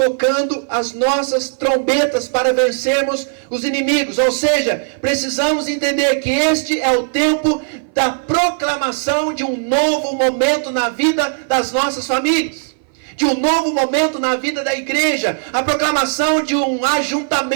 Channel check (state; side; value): silent; left; 59 dB below the other